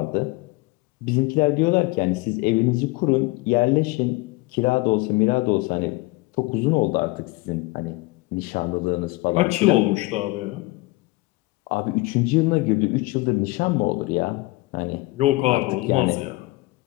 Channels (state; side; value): quieter; right; 21.9 dB